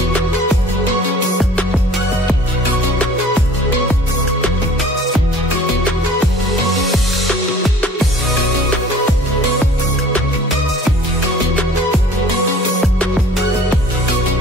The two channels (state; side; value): normal; both; correlation 0.49